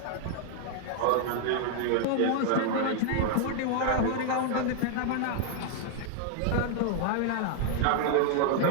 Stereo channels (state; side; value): different; both; correlation 0.00